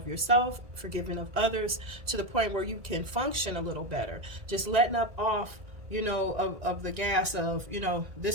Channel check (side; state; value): left; late; 1.9 ms